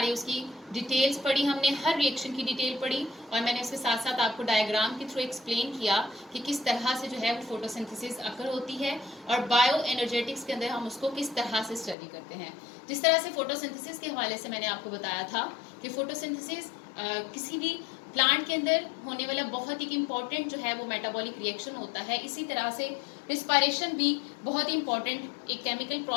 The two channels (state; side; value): drops out; right; at 12.0 s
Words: उसकी डिटेल्स पढ़ी। हमने हर रिएक्शन की डिटेल पढ़ी और मैंने उसके साथ साथ आपको डायग्राम के थ्रू एक्सप्लेन किया कि किस तरह से जो है वो फोटोसिंथेसिस अकर होती है और बायो एनर्जेटिक्स के अंदर हम उसको किस तरह से स्टडी करते हैं। जिस तरह से फोटोसिंथेसिस के हवाले से मैंने आपको बताया था कि फोटोसिंथेसिस किसी भी प्लांट के अंदर होने वाला बहुत ही इंपॉर्टेंट जो है वो मेटाबॉलिक रिएक्शन होता है। इसी तरह से रिस्पायरेशन भी बहुत ही इंपॉर्टेंट एक केमिकल